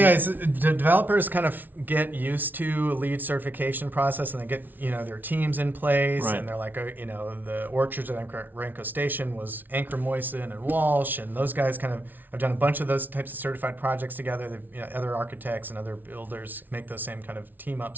the developers kind of get used to a LEED certification process, and they get, their teams in place, Right. and they're like, the orchards at Orenco Station was Anchor Moyson and Walsh, and those guys kind of have done a bunch of those types of certified projects together. They've, other architects and other builders make those same kind of team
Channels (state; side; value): late; left; 0.086 ms